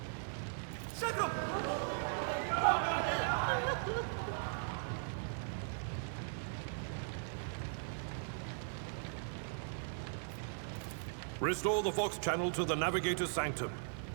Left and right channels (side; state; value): left; silent; 52 dB below the other